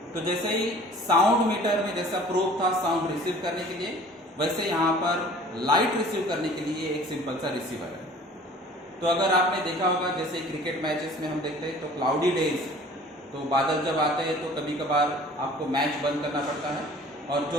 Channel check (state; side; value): normal; both; correlation 0.48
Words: तो जैसे ही साउंड मीटर में जैसा प्रोब था साउंड रिसीव करने के लिए, वैसे यहाँ पर लाइट रिसीव करने के लिए एक सिंपल सा रिसीवर है। तो अगर आपने देखा होगा जैसे क्रिकेट मैचेस में हम देखते हैं तो क्लाउडी डेज, तो बादल जब आते हैं तो कभी कभार आपको मैच बंद करना पड़ता है और जो